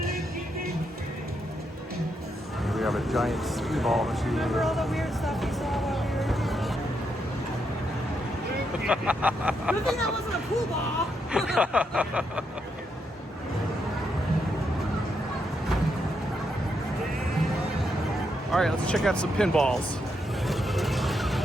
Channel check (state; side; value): normal; both; correlation 0.80